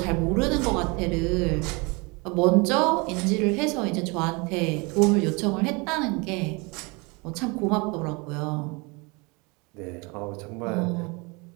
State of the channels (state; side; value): quieter; left; 28.2 dB